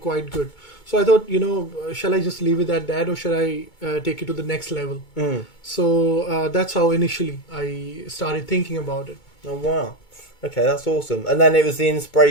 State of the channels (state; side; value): late; right; 2.2 ms